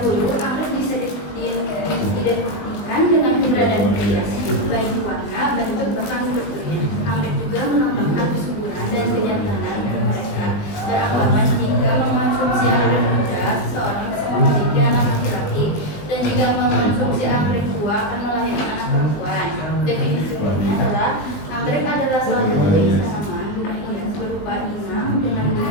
anggrek bisa diidentikan dengan keberadaan pria, baik warna, bentuk, bahkan bentuknya. Anggrek juga melambangkan kesuburan dan kejantanan mereka. Beranggapan jika mengonsumsi anggrek muda, seseorang bisa memiliki anak laki-laki, dan jika mengonsumsi anggrek tua akan melahirkan anak perempuan. Definisi umumnya adalah anggrek adalah salah satu jenis tanaman bunga hias berupa inang dengan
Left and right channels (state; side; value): late; right; 20 ms